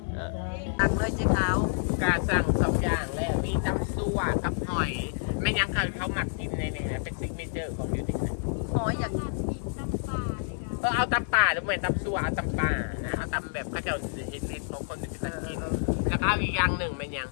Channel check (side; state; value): right; silent; 59 dB below the other